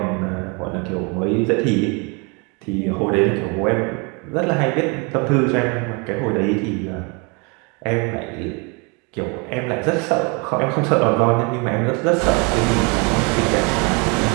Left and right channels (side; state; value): left; quieter; 31.5 dB